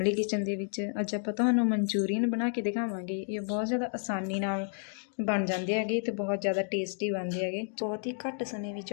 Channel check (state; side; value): silent; right; 57 dB below the other